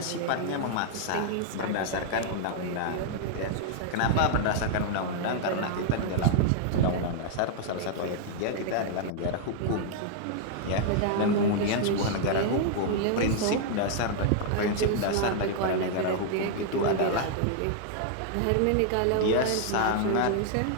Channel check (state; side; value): different; both; correlation -0.01